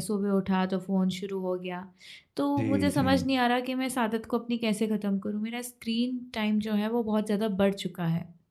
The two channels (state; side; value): identical; both; correlation 1.00